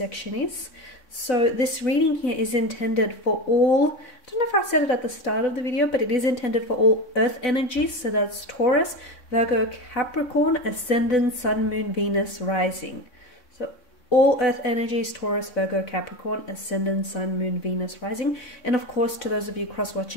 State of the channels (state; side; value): late; right; 4.0 ms